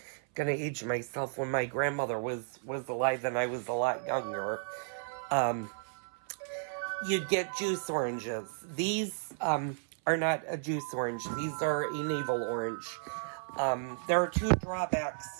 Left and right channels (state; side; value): silent; left; 56 dB below the other